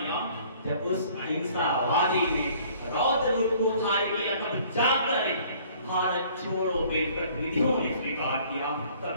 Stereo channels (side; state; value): both; inverted; correlation -0.56